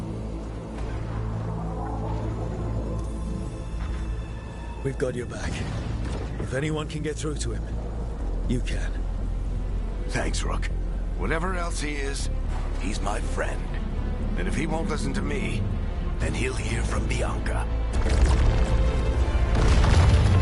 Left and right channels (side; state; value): both; identical; correlation 1.00